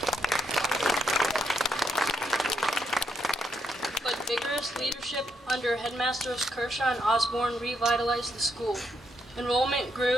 But vigorous leadership under Headmasters Kershaw and Osborne revitalized the school. Enrollment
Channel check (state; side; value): normal; both; correlation 0.78